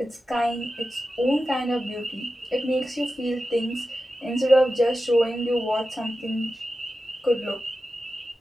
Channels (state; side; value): normal; both; correlation 0.92